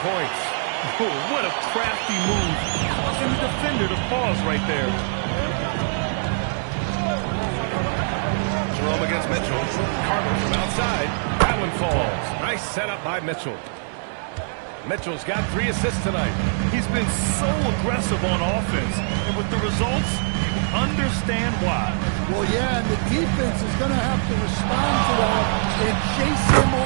points. Oh, what a crafty move. Causing the defender to pause right there. Jerome against Mitchell. Carter from outside. That one falls. Nice setup by Mitchell. Mitchell's got 3 assists tonight. He's been so aggressive on offense. And with the results, you understand why. Well, yeah, and the defense is going to have to respond to that and chase him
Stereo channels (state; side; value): silent; left; digital silence